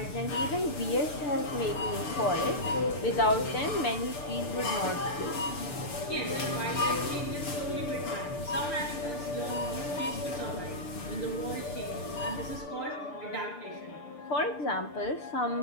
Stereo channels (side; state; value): right; late; 6.8 ms